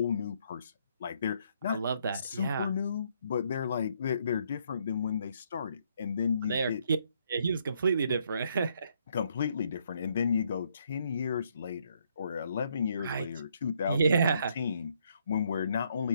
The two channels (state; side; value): inverted; both; correlation -0.71